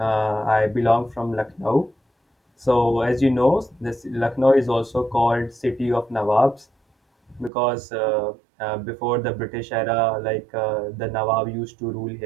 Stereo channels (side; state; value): left; drops out; at 7.5 s